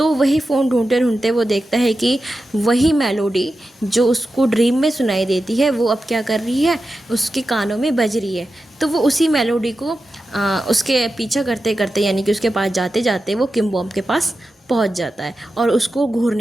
वही फ़ोन ढूंढते ढूंढते वो देखता है कि वही मेलोडी जो उसको ड्रीम में सुनाई देती है, वो अब क्या कर रही है, उसके कानों में बज रही है। तो वो उसी मेलोडी को उसके पीछा करते करते, यानी कि उसके पास जाते जाते वो किम बॉम के पास पहुंच जाता है और उसको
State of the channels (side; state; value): both; normal; correlation 0.91